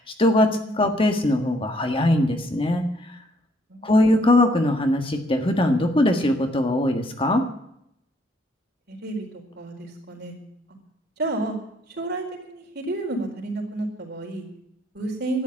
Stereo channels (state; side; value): normal; both; correlation 0.67